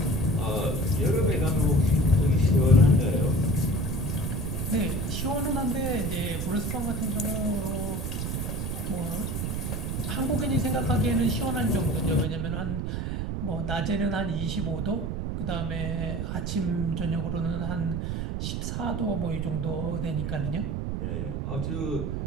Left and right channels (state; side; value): noise; right; rumble, 2 dB below the sound